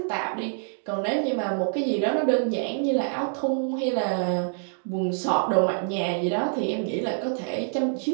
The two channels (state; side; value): silent; left; 61 dB below the other